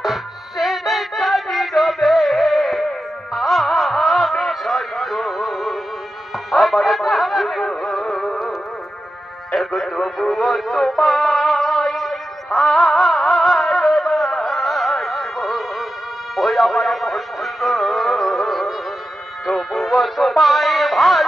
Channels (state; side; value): normal; both; correlation 0.91